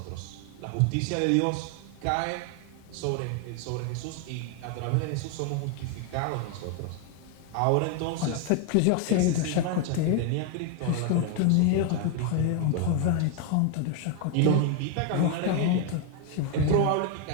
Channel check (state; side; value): different; both; correlation 0.01